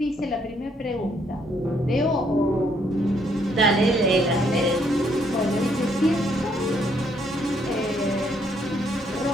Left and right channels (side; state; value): both; normal; correlation 0.70